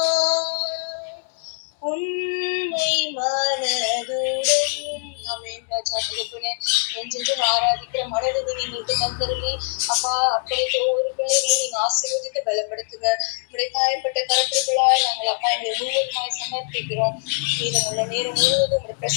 உன்னை மனதுடன். ஆமென் ராஜா. தகப்பனே, என்றென்றும் ஆராதிக்கிற மனதுக்கு எங்களுக்கு தந்தருளி அப்பா அப்படியே ஒவ்வொரு பிள்ளைகளையும் நீங்க ஆசீர்வதித்து பலப்படுத்துங்க. உடைய காயப்பட்ட கருத்துக்களாய் நாங்கள் அப்பா எங்களை முழுவதுமாய் சமர்ப்பிக்கிறோம். மீதமுள்ள நேரம் முழுவதும் உடைய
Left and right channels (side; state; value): right; silent; 57 dB below the other